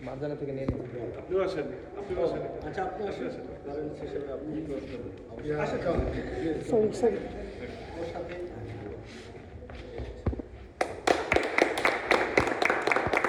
মাঝখানে থেকে নিয়ে নিন। আপনিও আসেন, আচ্ছা আপনি আসেন, প্যারেন্টস হিসেবে আপনি সরি ওর সাথে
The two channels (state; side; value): identical; both; correlation 1.00